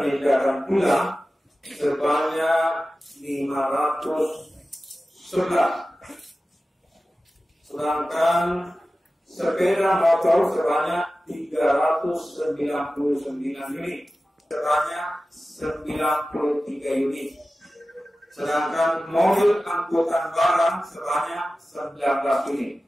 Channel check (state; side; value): normal; both; correlation 0.95